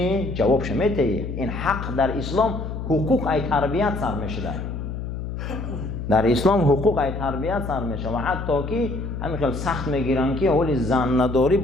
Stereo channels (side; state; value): left; noise; hum, 6 dB below the sound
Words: جوابش میدهی. این حق در اسلام حقوق ای تربیت سر میشده. در اسلام حقوق ای تربیت سر میشه و حتی که همین خیلی سخت میگیرن که حالی زن نداری